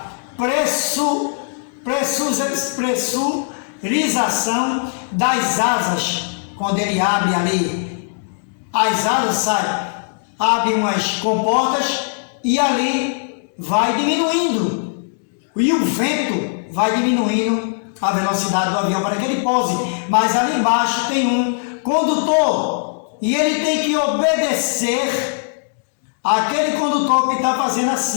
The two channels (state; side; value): silent; right; digital silence